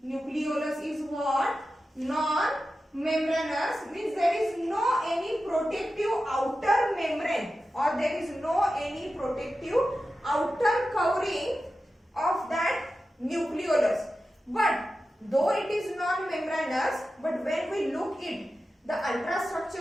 Nucleolus is what? Non-membranous, means there is no any protective outer membrane, or there is no any protective outer covering of that nucleolus. But though it is non-membranous, but when we look at the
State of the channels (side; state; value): both; normal; correlation 0.92